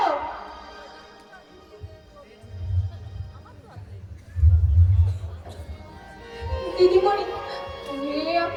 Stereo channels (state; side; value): identical; both; correlation 1.00